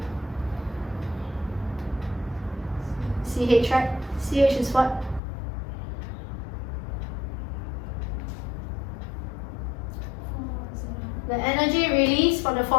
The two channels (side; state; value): right; drops out; at 5.2 s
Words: CH, right? CH is what? The energy released from the